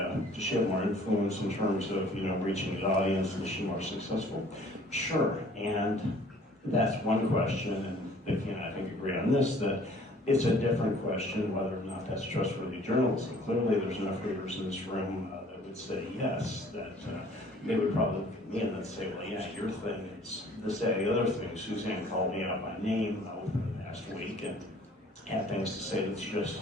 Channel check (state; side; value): normal; both; correlation 0.54